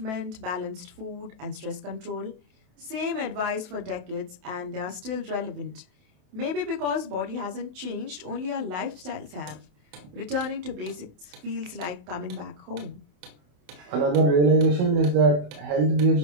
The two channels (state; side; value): late; left; 27 ms